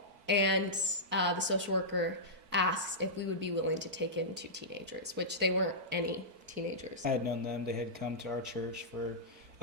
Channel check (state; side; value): late; left; 4.5 ms